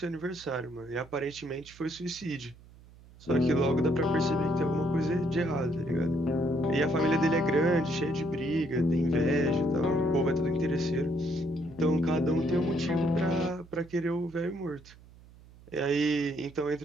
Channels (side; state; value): right; noise; hum, 23 dB below the sound